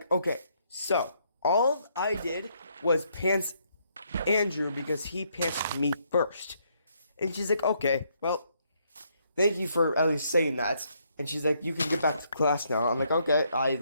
okay, so all I did was pants Andrew because he pantsed me first. And she's like, okay, well, thank you for at least saying that. And she's like, you can get back to class now. I'm like, okay, I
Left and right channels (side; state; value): both; inverted; correlation -0.72